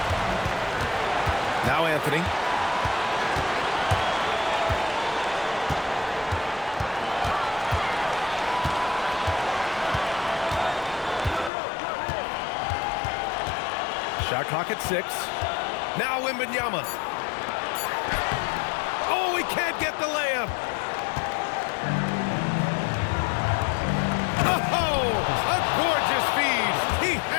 Now Anthony. Shot clock at 6. Now Wembanyama. Oh, he can't get the layup. Oh, a gorgeous feed. He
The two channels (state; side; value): drops out; right; at 11.5 s